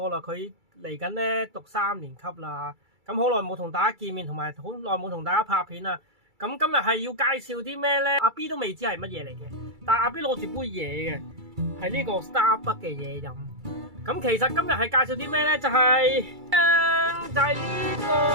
啦，佢嚟緊咧讀3年級啦。咁好耐冇同大家見面，同埋好耐冇同大家拍片啦。咁今日係要介紹啲咩咧？阿 B 都未知係乜嘢嚟嘅，但係阿 B 攞住杯嘢嘅，係呢個 Starbucks 嘅嘢飲。咁其實今日係介紹啲咩咧？就係呢個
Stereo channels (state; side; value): late; left; 2.3 ms